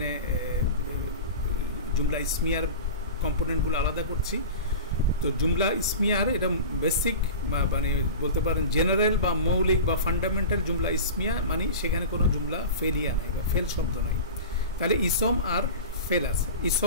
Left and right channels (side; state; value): both; inverted; correlation -0.32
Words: জুমলা ইসমিয়ার কম্পোনেন্টগুলো আলাদা করছি। তো জুমলা ইসমিয়ার এটা বেসিক, মানে বলতে পারেন জেনারেল বা মৌলিক বা ফান্ডামেন্টাল জুমলা ইসমিয়া, মানে সেখানে কোনো জুমলা ফেলিয়া নাই বা ফেল শব্দ নাই। তাহলে ইসম আর ফেল আছে,